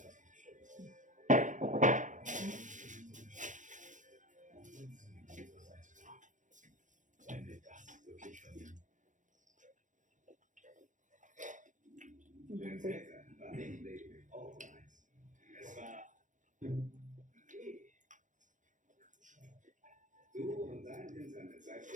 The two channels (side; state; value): left; late; 0.37 ms